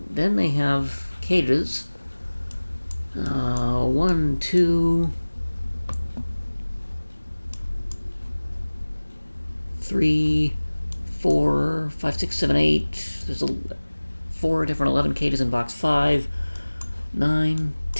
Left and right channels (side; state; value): both; inverted; correlation -1.00